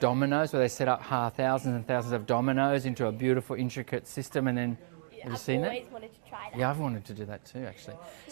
where they set up thousands and thousands of dominoes into a beautiful, intricate system, and then have you seen I've always wanted to try that. Yeah, I've wanted to do that too, actually.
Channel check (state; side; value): silent; left; digital silence